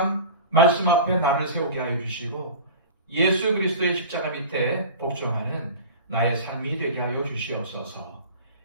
말씀 앞에 나를 세우게 하여 주시고 예수 그리스도의 십자가 밑에 복종하는 나의 삶이 되게 하여 주시옵소서.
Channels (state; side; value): inverted; both; correlation -0.35